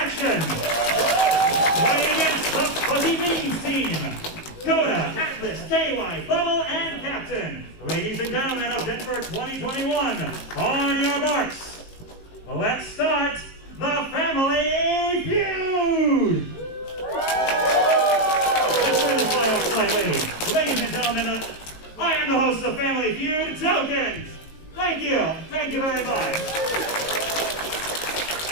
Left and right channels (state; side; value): late; right; 18 ms